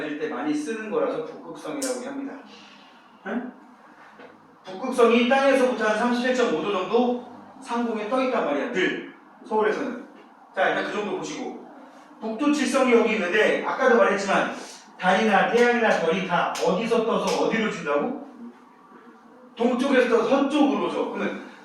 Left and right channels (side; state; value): both; identical; correlation 1.00